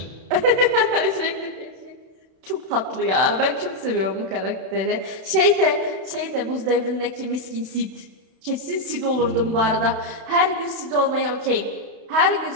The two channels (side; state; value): left; late; 32 ms